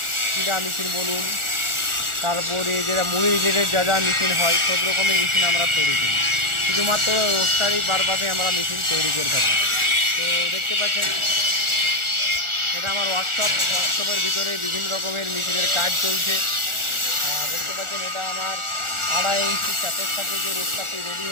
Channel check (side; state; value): left; late; 1.4 ms